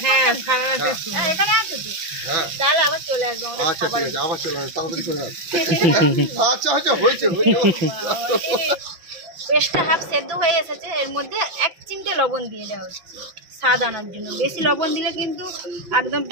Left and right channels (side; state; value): left; late; 5.9 ms